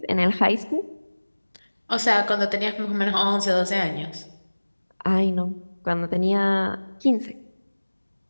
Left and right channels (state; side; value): inverted; both; correlation -1.00